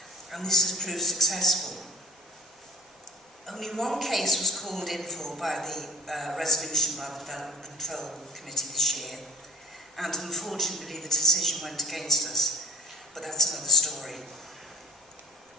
and this has proved successful. Only one case was called in for by the resolution by the Development Control Committee this year, and unfortunately the decision went against us, but that's another story.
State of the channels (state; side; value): normal; both; correlation 0.48